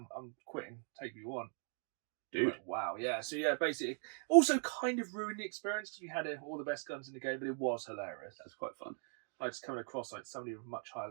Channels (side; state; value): left; silent; 51 dB below the other